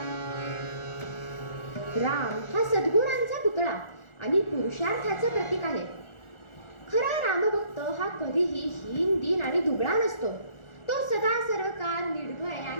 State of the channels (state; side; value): late; right; 1.4 ms